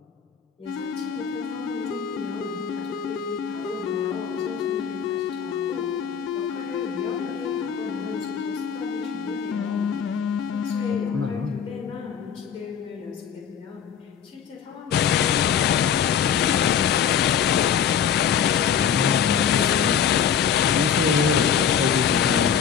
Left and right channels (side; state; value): right; quieter; 8.0 dB